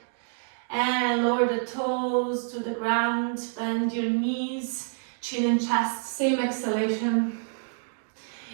And lower the toes to the ground, bend your knees, chin and chest. Same exhalation.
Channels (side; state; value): left; silent; digital silence